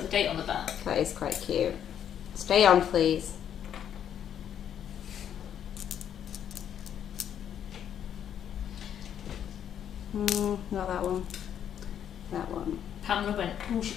the date on the back. That is quite cute. Stay on, please. Not that one. That one. Pamela went, oh, she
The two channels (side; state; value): right; quieter; 9.4 dB